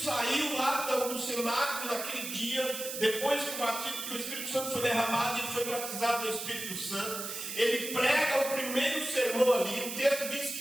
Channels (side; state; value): right; noise; hiss, 6 dB below the sound